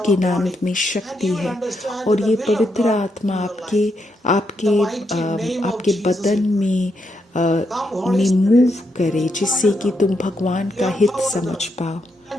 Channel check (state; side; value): normal; both; correlation 0.81